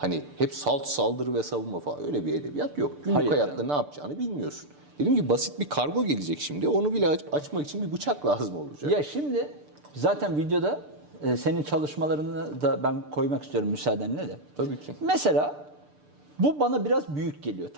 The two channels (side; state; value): left; late; 6.8 ms